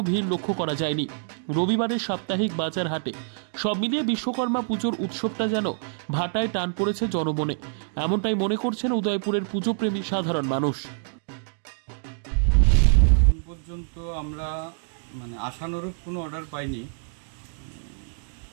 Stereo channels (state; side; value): silent; left; digital silence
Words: ভিড় লক্ষ্য করা যায়নি। রবিবারের সাপ্তাহিক বাজার হাটে সব মিলিয়ে বিশ্বকর্মা পুজোর উৎসবটা যেন ভাটায় টান পড়েছে জনমনে, এমনটাই মনে করছেন উদয়পুরের পুজোপ্রেমী সাধারণ মানুষ। এখন পর্যন্ত আমরা আশানুরূপ কোনো অর্ডার পাইনি,